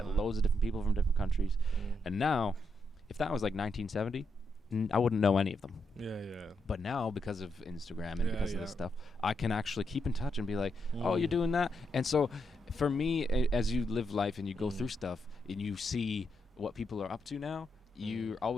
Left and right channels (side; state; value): both; normal; correlation 0.81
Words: loads of different people from different countries. And now, if that was like 1970, I wouldn't know any of them. But now, because of Instagram and because of this stuff, I can actually keep in touch and be like, oh, you're doing that. And so for me, as you live life and you go through stuff and you see what people are up to now, you're